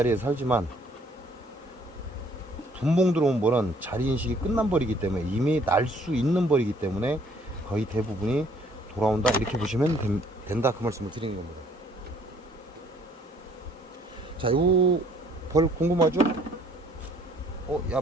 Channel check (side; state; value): both; normal; correlation 0.61